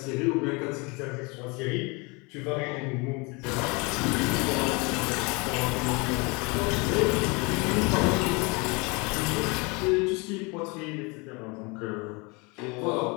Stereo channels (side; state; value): right; quieter; 28.4 dB